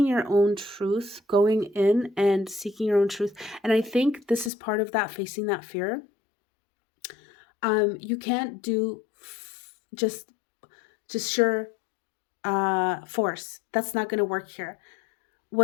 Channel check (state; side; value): drops out; right; at 4.5 s